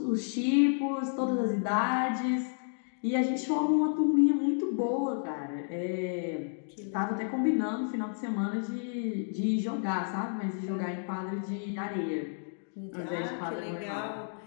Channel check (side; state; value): right; silent; digital silence